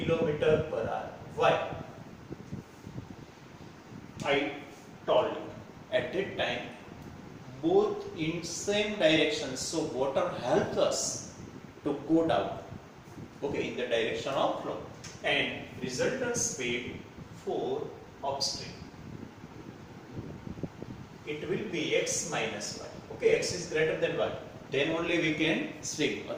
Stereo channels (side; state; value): both; identical; correlation 1.00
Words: per hour. Why? I told you at that time both in same direction, so water helps us to go down, okay, in the direction of flow. And resultant speed for upstream, it will be x minus y. Okay, x is greater than y, then only we can swim,